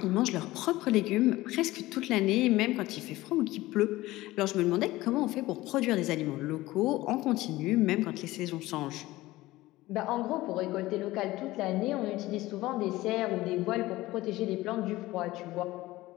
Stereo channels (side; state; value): right; quieter; 18.0 dB